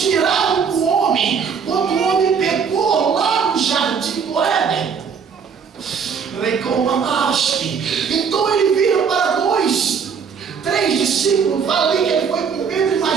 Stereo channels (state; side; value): quieter; left; 6.4 dB